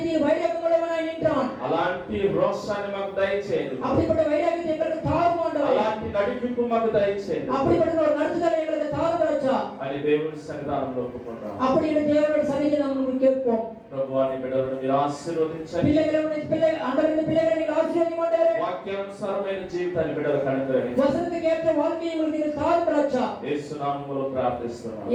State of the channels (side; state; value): both; identical; correlation 1.00